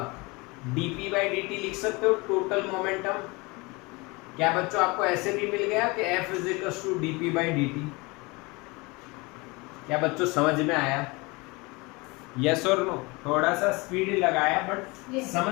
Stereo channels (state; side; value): quieter; right; 25.7 dB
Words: dP by dt लिख सकते हो, टोटल मोमेंटम? क्या बच्चों आपको ऐसे भी मिल गया कि F is equals to dP by dt? क्या बच्चों समझ में आया? यस और नो? थोड़ा सा स्पीड लगाया बट